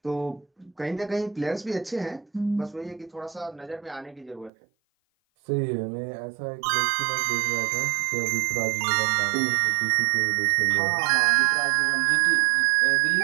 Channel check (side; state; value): left; drops out; at 4.5 s